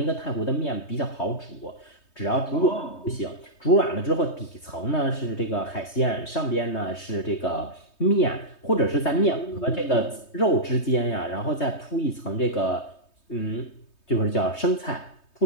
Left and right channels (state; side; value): late; right; 3.2 ms